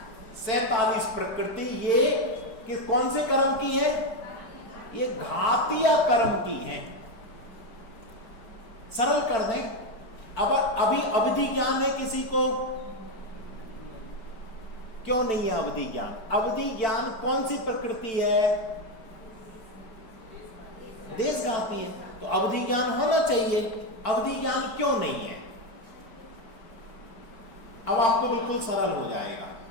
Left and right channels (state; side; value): late; right; 4.5 ms